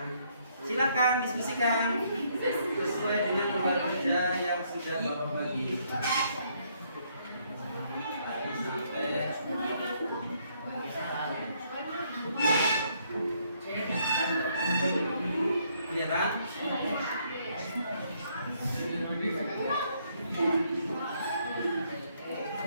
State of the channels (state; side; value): inverted; both; correlation -0.70